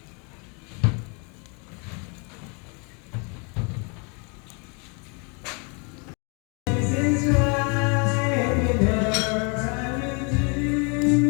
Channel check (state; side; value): quieter; right; 34.3 dB